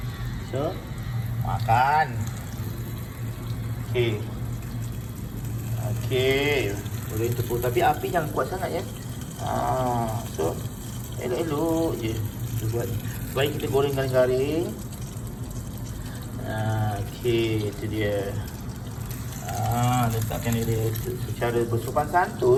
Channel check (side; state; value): both; identical; correlation 1.00